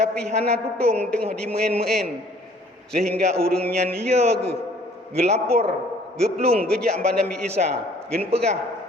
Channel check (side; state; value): both; normal; correlation 0.56